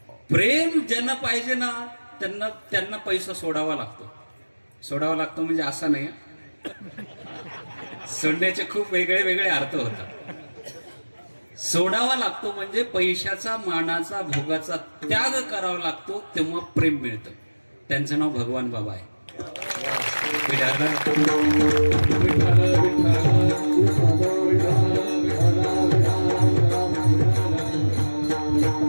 प्रेम ज्यांना पाहिजे ना त्यांना पैसा सोडावा लागतो. सोडावा लागतो म्हणजे असा नाही, सोडण्याचे खूप वेगळे वेगळे अर्थ होतात. सोडावा लागतो म्हणजे पैशाचा, मानाचा, भोगाचा त्याग करावा लागतो, तेव्हा प्रेम मिळतं. त्यांचं नाव भगवान बाबा आहे.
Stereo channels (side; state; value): both; inverted; correlation -1.00